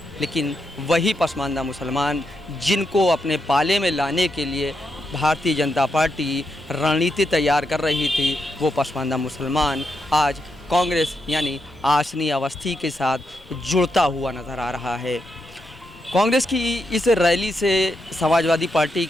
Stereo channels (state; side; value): normal; both; correlation 0.83